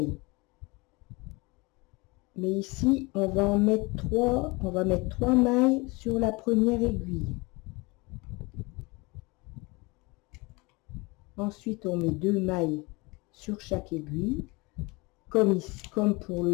Mais ici, on va mettre 3 mailles sur la première aiguille. Ensuite, on met 2 mailles sur chaque aiguille, comme pour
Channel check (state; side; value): quieter; right; 25.7 dB